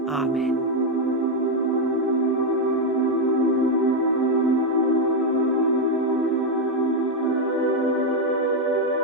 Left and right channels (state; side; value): normal; both; correlation 0.02